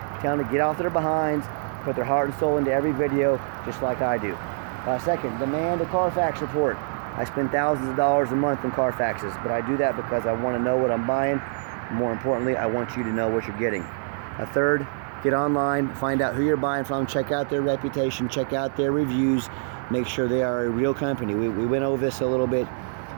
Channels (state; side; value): silent; left; 62 dB below the other